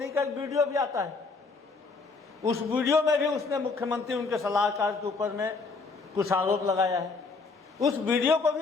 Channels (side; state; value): right; quieter; 4.3 dB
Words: का एक वीडियो भी आता है। उस वीडियो में भी उसने मुख्यमंत्री उनके सलाहकार के ऊपर में कुछ आरोप लगाया है। उस वीडियो को